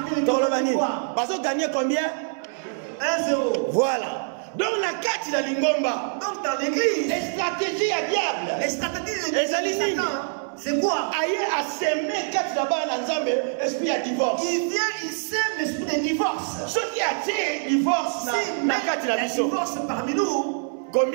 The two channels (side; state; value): left; silent; 62 dB below the other